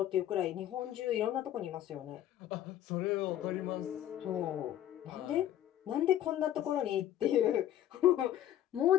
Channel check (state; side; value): quieter; right; 11.9 dB